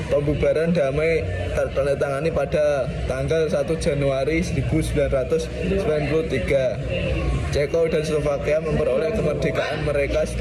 pembubaran damai tertandatangani pada tanggal 1 Januari 1993. Ceko dan Slovakia memperoleh kemerdekaan mereka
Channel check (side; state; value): both; identical; correlation 1.00